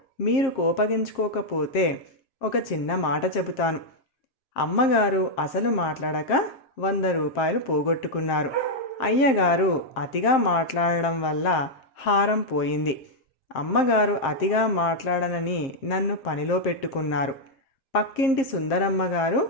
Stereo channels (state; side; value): late; right; 7.5 ms